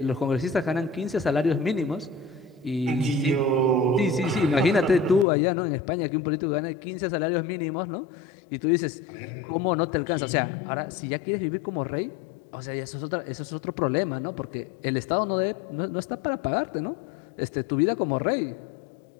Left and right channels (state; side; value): drops out; right; at 5.2 s